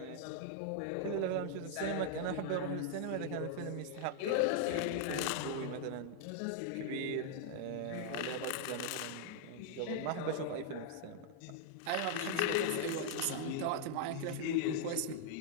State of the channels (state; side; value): different; both; correlation -0.01